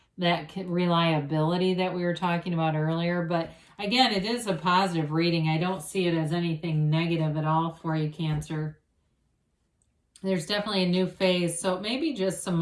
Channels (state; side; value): identical; both; correlation 1.00